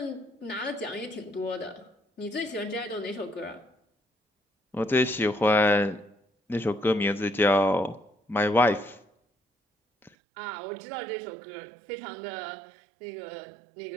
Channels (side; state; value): left; drops out; at 10.1 s